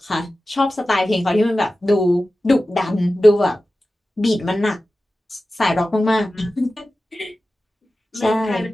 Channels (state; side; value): normal; both; correlation 0.95